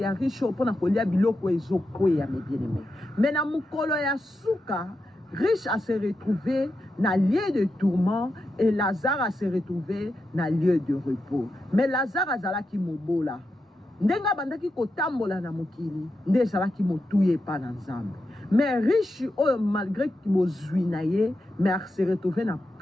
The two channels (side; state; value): both; normal; correlation 0.87